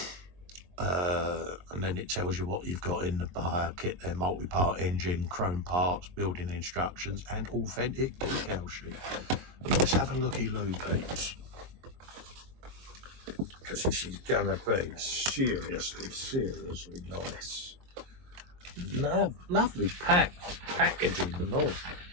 And then it tells you what you've got in the buyer kit there: multi-part engine, chrome parts, building instructions, and authentic decal sheet. Let's have a looky-loo, peeps, because this is gonna be seriously nice. Lovely packaging and all.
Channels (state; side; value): late; left; 22 ms